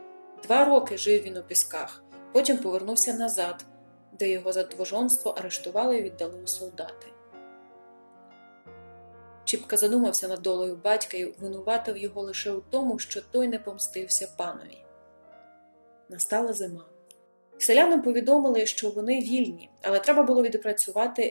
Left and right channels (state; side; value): inverted; both; correlation -1.00